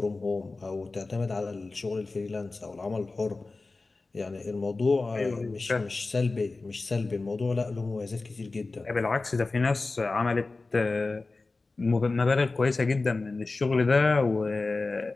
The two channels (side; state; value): right; quieter; 3.6 dB